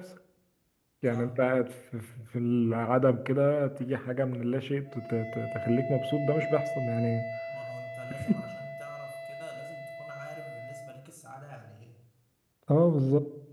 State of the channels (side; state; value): both; identical; correlation 1.00